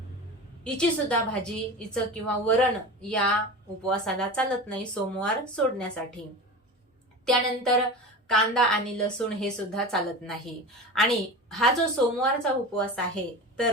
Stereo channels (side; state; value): both; normal; correlation 0.30